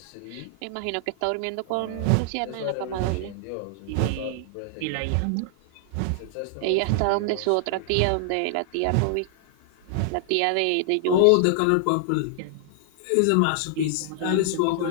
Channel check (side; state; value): both; different; correlation -0.01